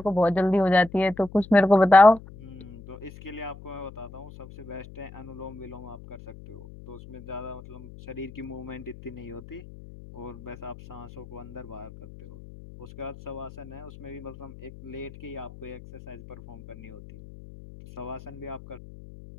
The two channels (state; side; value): noise; left; hum, 17 dB below the sound